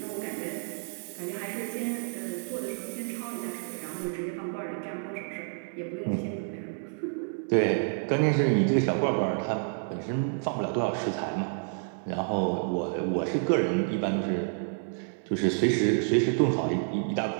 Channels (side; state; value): left; silent; digital silence